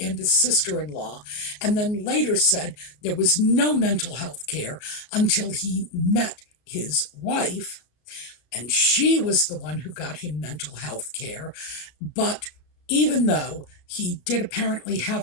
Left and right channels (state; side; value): late; right; 33 ms